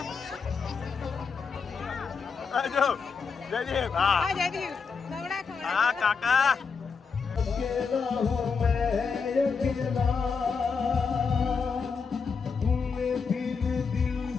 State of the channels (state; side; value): quieter; right; 5.4 dB